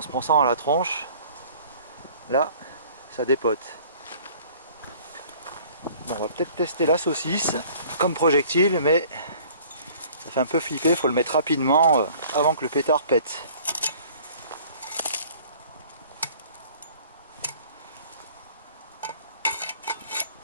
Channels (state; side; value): inverted; both; correlation -0.51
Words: se prend ça dans la tronche, là, ça dépote. Bon, on va peut-être tester la saucisse comme projectile, mais ça fait un peu flipper, il faut le mettre rapidement avant que le pétard pète.